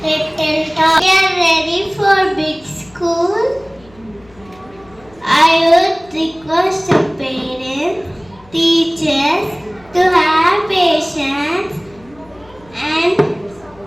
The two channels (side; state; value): left; noise; hum, 27 dB below the sound